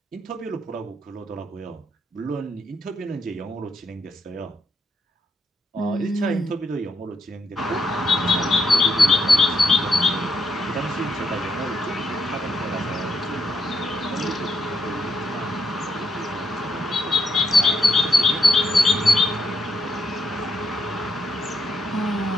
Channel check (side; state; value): both; normal; correlation 0.78